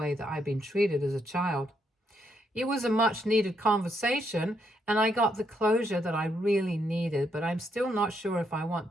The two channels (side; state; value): both; normal; correlation 0.76